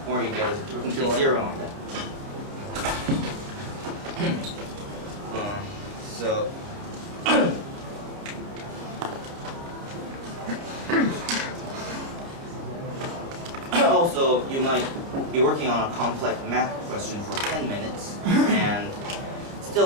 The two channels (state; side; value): late; left; 30 ms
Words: or you get a complete zero on that. So also, you might be working on a complex math question for 10 minutes and